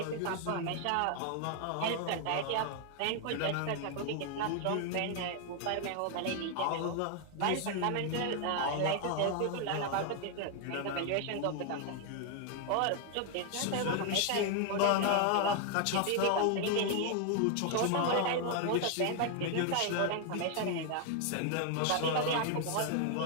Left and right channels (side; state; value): both; different; correlation 0.00